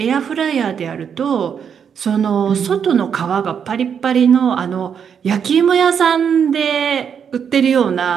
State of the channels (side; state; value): left; quieter; 7.5 dB